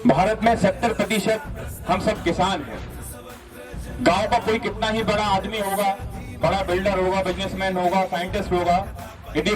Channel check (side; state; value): both; identical; correlation 1.00